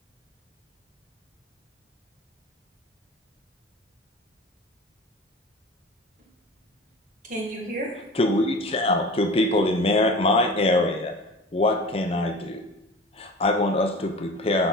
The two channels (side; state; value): both; normal; correlation 0.38